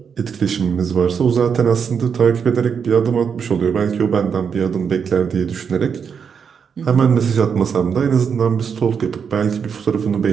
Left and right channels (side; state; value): left; quieter; 6.7 dB